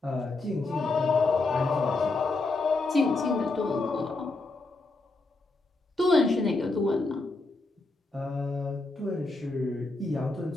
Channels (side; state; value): right; quieter; 3.3 dB